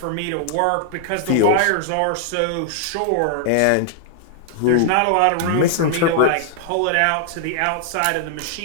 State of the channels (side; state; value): both; different; correlation -0.01